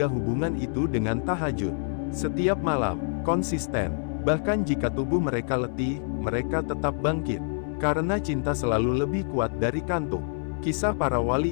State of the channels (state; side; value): silent; right; 60 dB below the other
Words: hubungan itu dengan tahajud. Setiap malam, konsisten. Bahkan jika tubuh mereka letih, mereka tetap bangkit. Karena cinta selalu lebih kuat dari kantuk. Kisah para wali